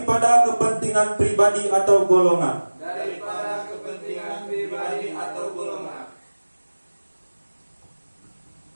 kepentingan pribadi atau golongan. daripada kepentingan pribadi atau golongan.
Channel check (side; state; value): both; inverted; correlation -1.00